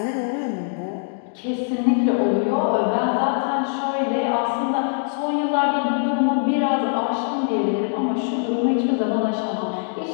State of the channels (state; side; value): silent; right; digital silence